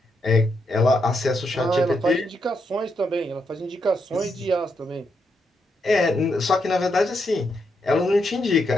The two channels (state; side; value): normal; both; correlation 0.80